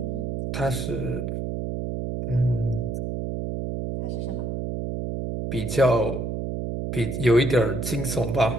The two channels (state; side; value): noise; right; hum, 3 dB below the sound